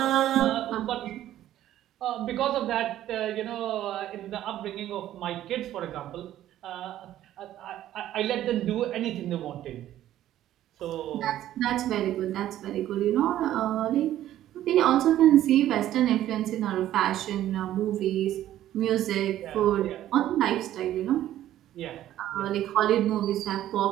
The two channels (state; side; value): quieter; left; 12.7 dB